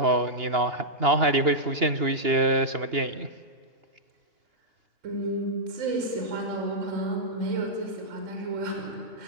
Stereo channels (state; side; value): late; left; 2.8 ms